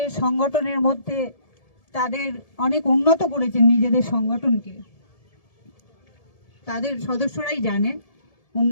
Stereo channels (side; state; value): right; late; 1.7 ms